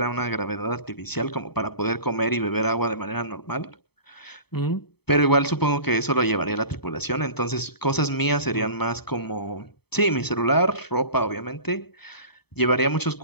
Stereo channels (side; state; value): right; late; 0.97 ms